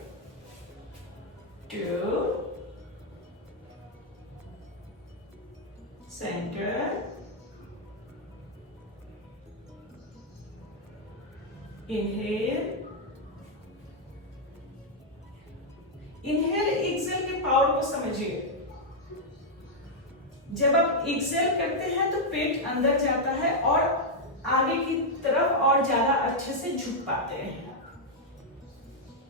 2 centre, inhale, inhale exhale के पावर को समझिए। जब आप एक्सहेल करते हैं तो पेट अंदर जाता है और आगे की तरफ और ज्यादा अच्छे से झुक पाते हैं।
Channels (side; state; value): both; normal; correlation -0.02